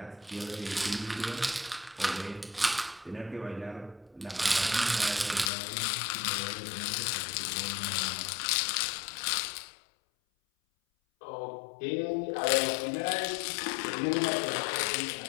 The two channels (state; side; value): drops out; right; at 5.5 s